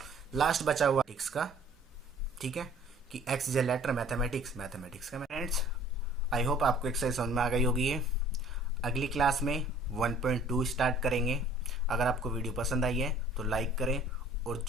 लास्ट बचा हुआ x का, ठीक है, कि x is a letter mathematics का। फ्रेंड्स आई होप आपको एक्सरसाइज समझ में आ गई होगी। ये अगली क्लास में 1.2 स्टार्ट करेंगे। अगर आपको वीडियो पसंद आई है तो लाइक करें, और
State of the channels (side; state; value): both; normal; correlation 0.53